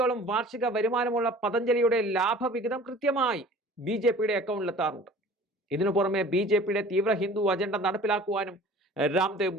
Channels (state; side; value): normal; both; correlation 0.45